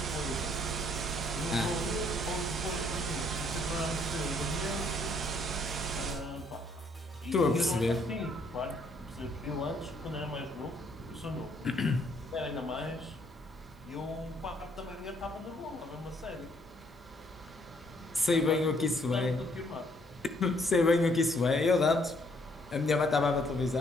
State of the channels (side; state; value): both; normal; correlation 0.67